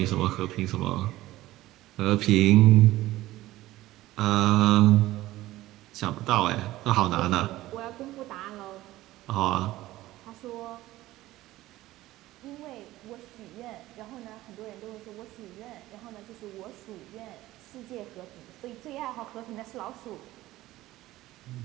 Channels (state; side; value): quieter; left; 16.5 dB